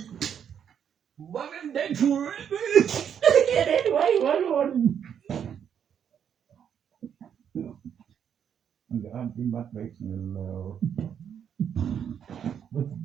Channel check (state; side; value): quieter; left; 8.3 dB